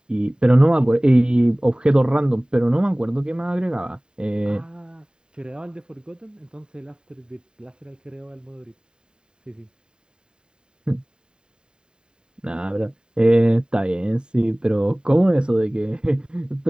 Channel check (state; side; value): late; left; 0.048 ms